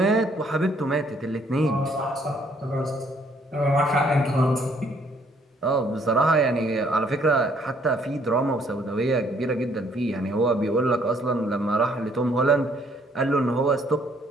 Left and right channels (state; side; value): normal; both; correlation 0.65